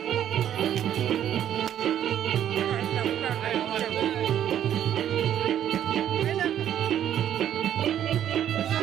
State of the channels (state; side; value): quieter; left; 10.6 dB